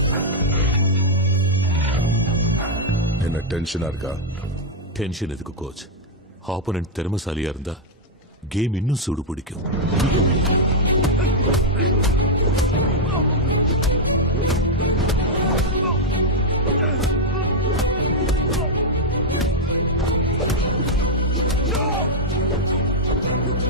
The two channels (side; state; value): both; normal; correlation -0.02